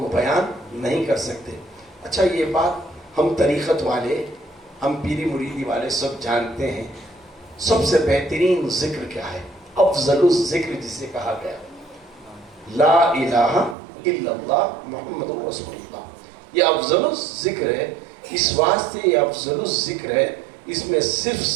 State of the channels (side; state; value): left; drops out; at 13.8 s